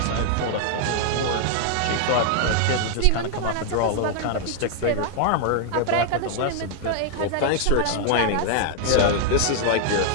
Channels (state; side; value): different; both; correlation 0.00